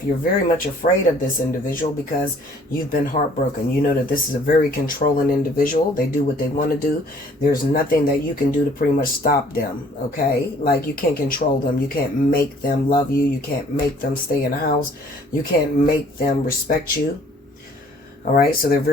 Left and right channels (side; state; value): both; normal; correlation 0.57